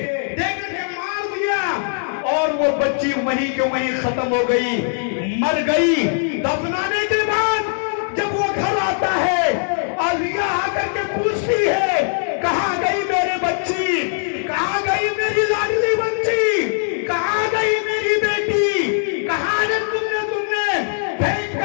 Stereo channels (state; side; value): silent; right; 65 dB below the other